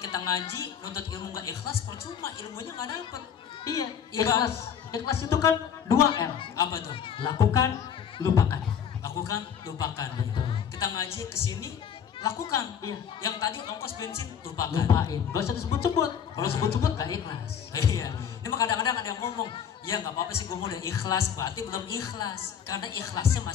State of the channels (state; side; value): quieter; right; 8.0 dB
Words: ngaji, nuntut ilmu nggak ikhlas, percuma, ilmunya nggak dapet. Iya, ikhlas. Ikhlas itu kan 2 R. Apa tuh? Lakukan, lupakan. Lakukan, lupakan. Betul. Kita ngaji kesini, lakukan. Iya. Yang tadi ongkos bensin, lupakan. Lupain. Gak usah disebut-sebut. Kalau sebut-sebut gak ikhlas. Iya. Ini mah kadang-kadang ada yang ngomong, ya nggak apa-apa sih, gue mau udah ikhlas, berarti belum ikhlas. Karena ikhlasnya